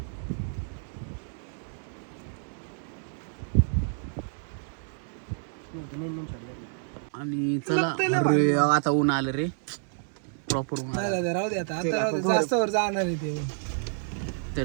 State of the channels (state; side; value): silent; left; 59 dB below the other